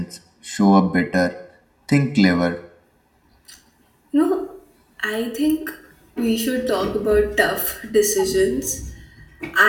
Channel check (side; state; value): both; identical; correlation 1.00